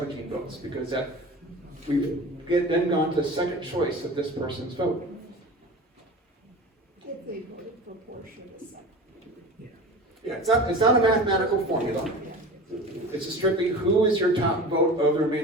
votes, because we've then gone to second choice of this person's vote. If they voted for Portia the second. Yeah, it's not a mathematical formula. It's strictly who is your top vote of the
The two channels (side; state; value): both; normal; correlation 0.34